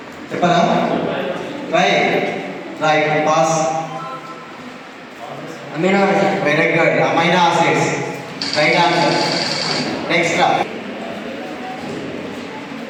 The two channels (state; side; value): identical; both; correlation 1.00